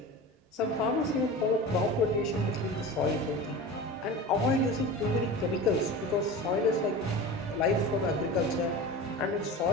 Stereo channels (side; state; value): both; normal; correlation 0.32